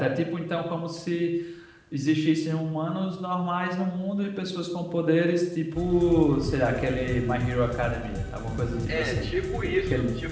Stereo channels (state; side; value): identical; both; correlation 1.00